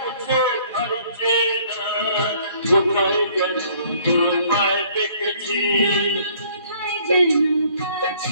ভাবছে না, কোথায় যেন তোমায় দেখেছি, কোথায় যেন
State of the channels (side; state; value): both; inverted; correlation -0.59